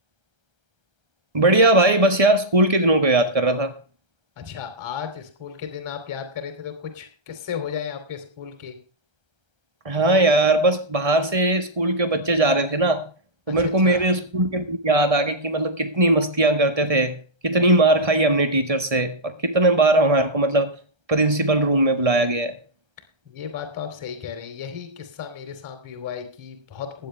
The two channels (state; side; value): late; left; 1.6 ms